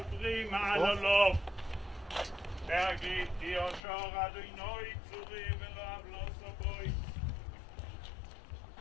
מעלולו להגיד כי יושר אדוני צורי ולא אבלו סבוי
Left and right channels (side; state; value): right; drops out; at 3.8 s